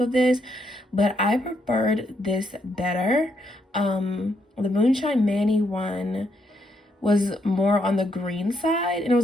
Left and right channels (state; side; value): normal; both; correlation 0.76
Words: this, but I preferred this better. The Moonshine Manny one was more on the green side, and it